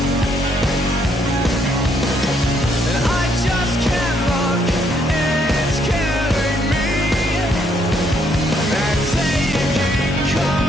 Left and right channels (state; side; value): normal; both; correlation 0.71